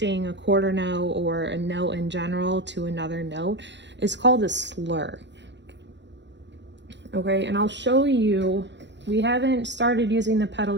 a quarter note or a note in general to another note, it's called a slur. Okay, and I'll show you, we haven't started using the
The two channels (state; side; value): late; left; 0.52 ms